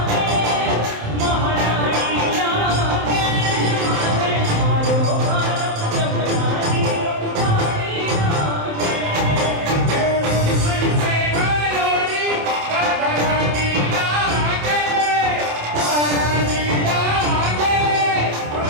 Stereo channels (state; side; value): late; left; 27 ms